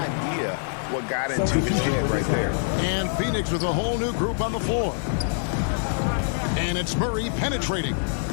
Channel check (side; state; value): right; silent; digital silence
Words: what got into his head right there. And Phoenix with a whole new group on the floor. And it's Murray penetrating.